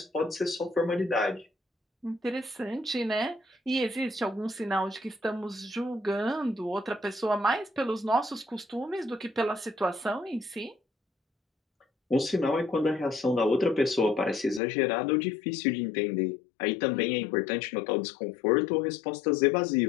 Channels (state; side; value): drops out; right; at 14.6 s